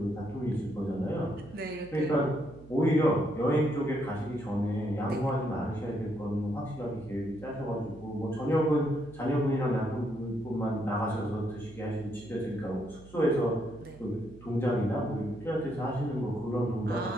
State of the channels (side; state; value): right; noise; hum, 20 dB below the sound